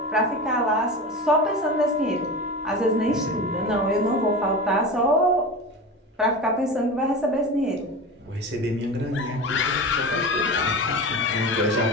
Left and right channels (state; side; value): normal; both; correlation 0.28